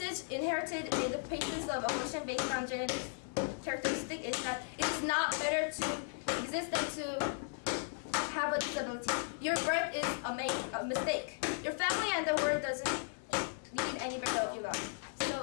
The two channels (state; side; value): silent; right; digital silence